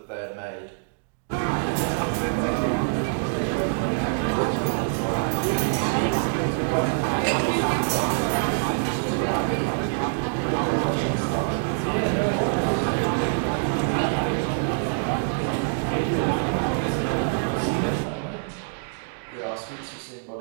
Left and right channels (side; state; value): left; silent; digital silence